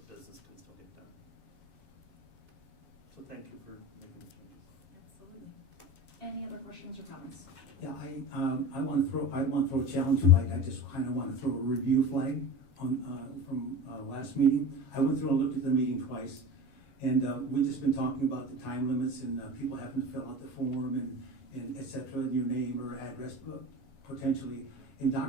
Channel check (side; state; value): right; late; 7.3 ms